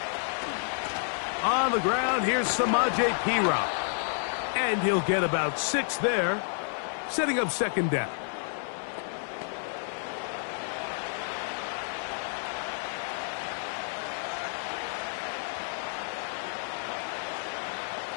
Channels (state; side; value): silent; right; 58 dB below the other